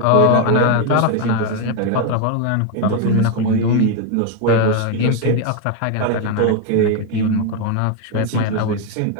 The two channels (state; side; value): different; both; correlation 0.01